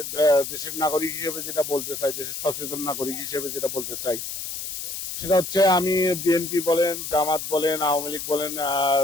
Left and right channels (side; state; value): left; noise; hiss, 6 dB below the sound